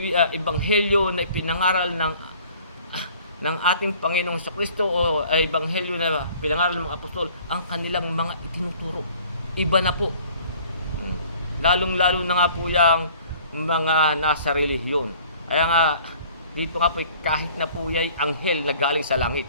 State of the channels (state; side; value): inverted; both; correlation -0.52